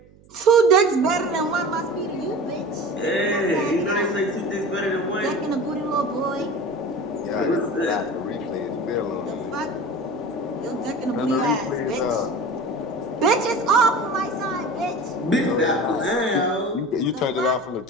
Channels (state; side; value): noise; right; hum, 26 dB below the sound